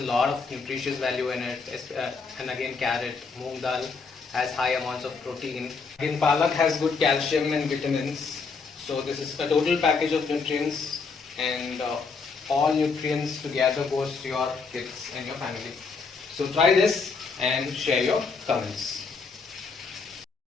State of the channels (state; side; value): quieter; right; 4.8 dB